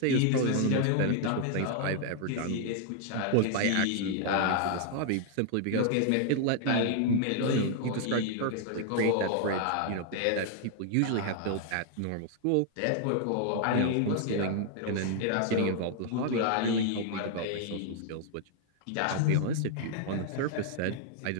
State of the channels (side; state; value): both; different; correlation 0.00